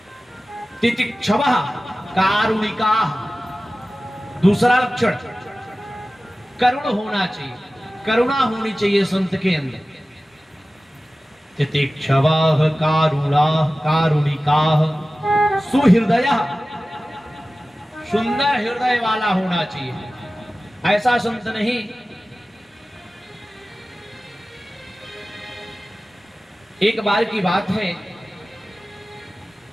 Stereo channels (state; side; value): normal; both; correlation 0.96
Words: तितिक्षवः कारुणिकाः। दूसरा लक्षण करुण होना चाहिए, करुणा होनी चाहिए संत के अंदर। तितिक्षवाः कारुणाः कारुणिकाः सुहृदयः। सुंदर हृदय वाला होना चाहिए। ऐसा संत नहीं एक बार की बात है,